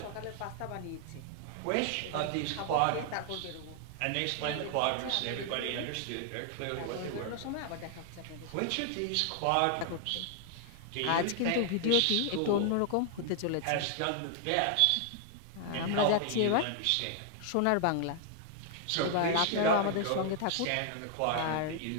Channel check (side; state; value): both; different; correlation 0.00